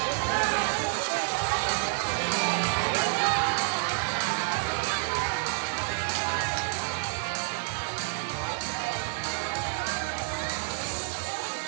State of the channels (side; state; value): left; silent; 59 dB below the other